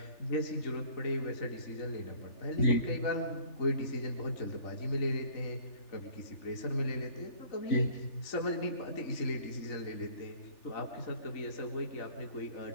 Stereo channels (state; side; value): late; right; 3.4 ms